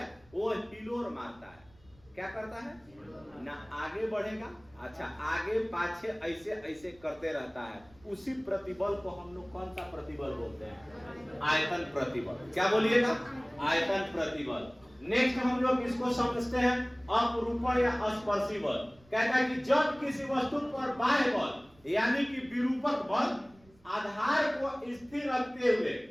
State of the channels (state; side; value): noise; right; rumble, 29 dB below the sound